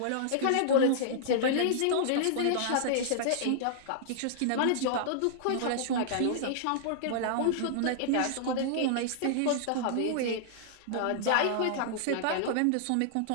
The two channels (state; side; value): different; both; correlation -0.01